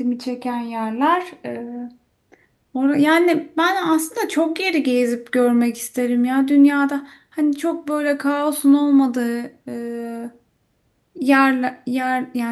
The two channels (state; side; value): identical; both; correlation 1.00